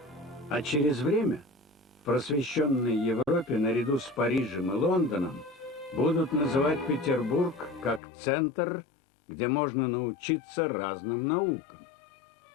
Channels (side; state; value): right; drops out; at 8.0 s